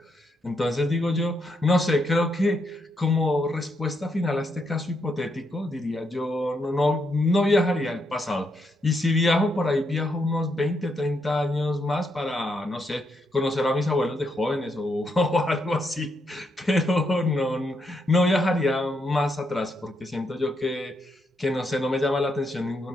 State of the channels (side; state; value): both; normal; correlation 0.79